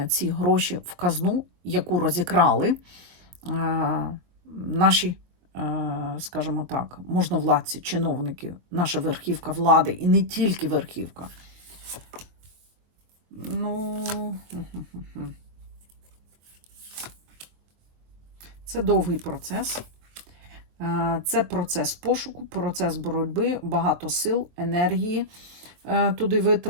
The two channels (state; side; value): late; left; 23 ms